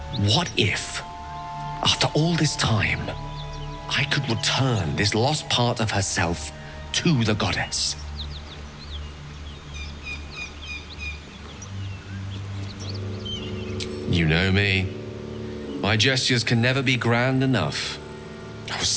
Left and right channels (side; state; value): both; identical; correlation 1.00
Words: what if, after all this time, I could return this lost part of herself to the goddess? You know me. My gestures can never be grand enough. I was